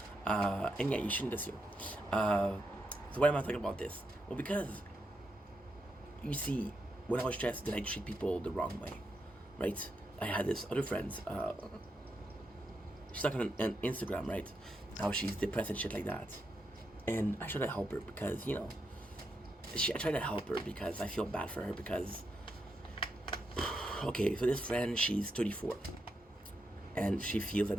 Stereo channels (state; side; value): normal; both; correlation 0.83